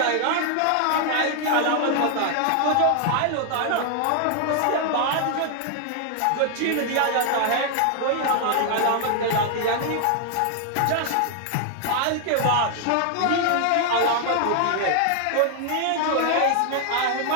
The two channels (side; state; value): both; different; correlation 0.00